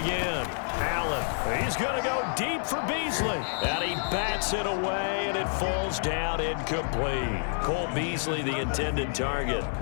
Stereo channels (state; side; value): silent; right; digital silence